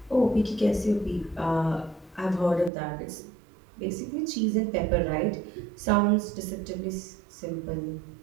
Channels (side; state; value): left; drops out; at 2.7 s